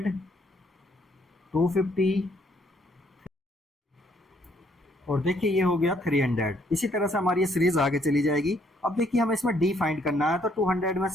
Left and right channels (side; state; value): both; normal; correlation 0.68